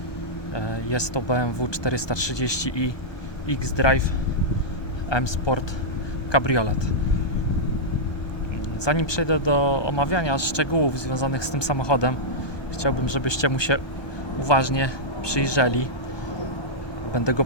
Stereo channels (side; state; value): right; late; 1.3 ms